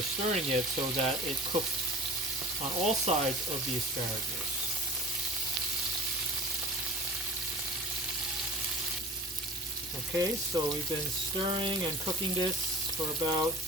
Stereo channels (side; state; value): both; normal; correlation 0.40